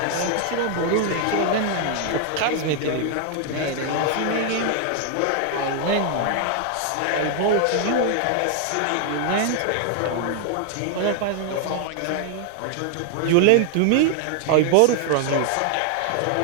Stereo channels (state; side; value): different; both; correlation 0.00